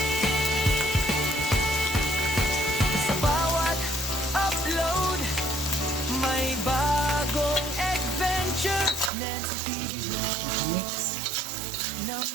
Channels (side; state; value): left; drops out; at 9.1 s